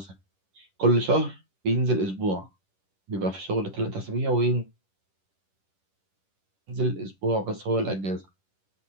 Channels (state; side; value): late; left; 10 ms